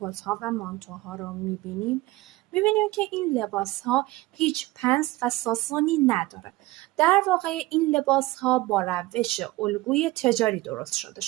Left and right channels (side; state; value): left; quieter; 19.3 dB